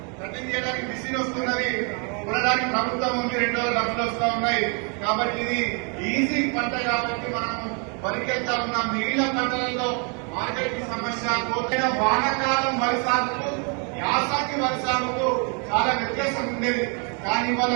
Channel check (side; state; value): left; quieter; 37.0 dB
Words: కటింగ్ చేయడానికి మిషన్ వస్తున్నది, కొనడానికి ప్రభుత్వం ఉంది, 2 డబ్బులు వస్తా ఉన్నాయి. కాబట్టి ఇది ఈజీ పంట కాబట్టి మనం వరికి వెళ్తా ఉన్నాం. మిగిలిన పంటలలో మార్కెట్ సమస్య, కోతైన వానకాలం వరి సాగుకు యాసంగి వరి సాగుకు చాలా వ్యత్యాసం ఉండేది. కానీ ఇవాళ